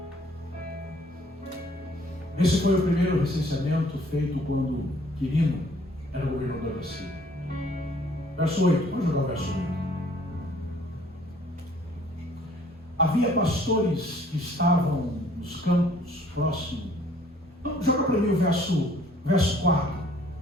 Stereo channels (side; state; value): both; normal; correlation 0.58